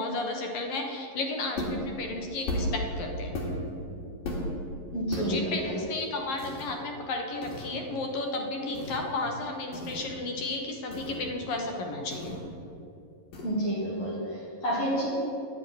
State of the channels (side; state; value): right; late; 11 ms